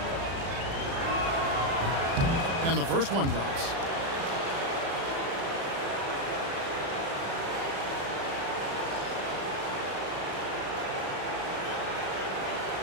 And the first one drops.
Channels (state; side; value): late; left; 36 ms